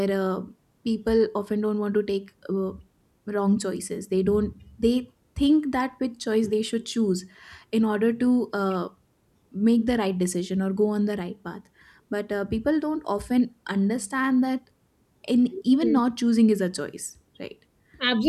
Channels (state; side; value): identical; both; correlation 1.00